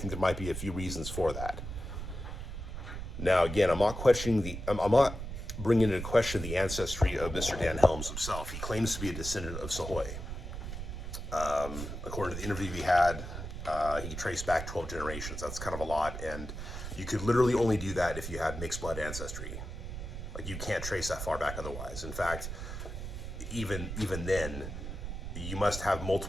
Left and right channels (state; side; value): noise; right; rumble, 7 dB below the sound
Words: there might be a few reasons for that. Now, again, I'm not bringing into question the ancestry of Mr. Dan Helms himself. He claims to be a descendant of Sahoy. According to the interview we had, he traced back 12 generations. That's kind of a lot, and you could literally only do that if you had mixed blood ancestry. Like, you can't trace that far back otherwise. In fact, even then, you must have